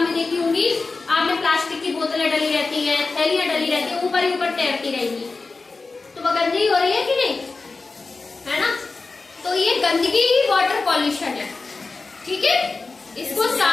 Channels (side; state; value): right; quieter; 3.9 dB